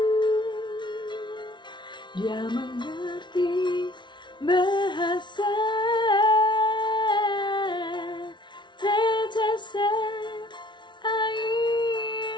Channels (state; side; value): late; right; 0.23 ms